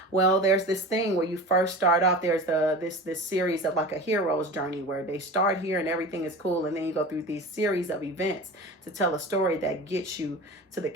Well, there's this thing where you first start off. There's this series of like a hero's journey where they start here and everything is cool. And then you go through these series of events to tell a story that gets you to the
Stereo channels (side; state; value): both; normal; correlation 0.33